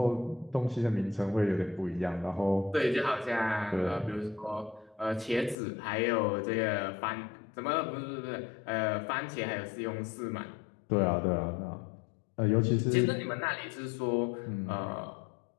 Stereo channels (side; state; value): right; drops out; at 5.6 s